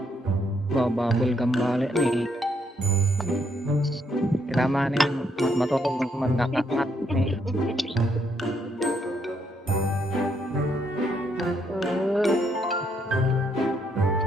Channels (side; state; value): both; normal; correlation 0.73